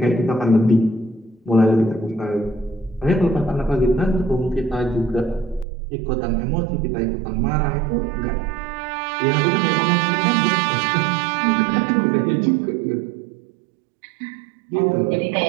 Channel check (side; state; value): left; drops out; at 5.7 s